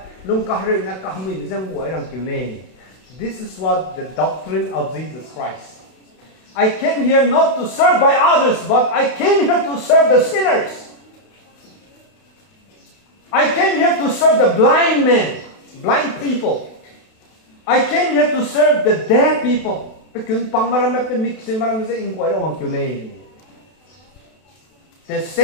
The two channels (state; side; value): late; right; 32 ms